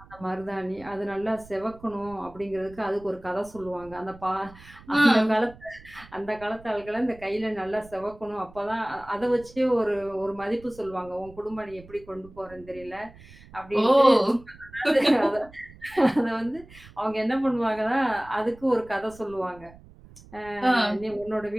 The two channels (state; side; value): noise; right; rumble, 21 dB below the sound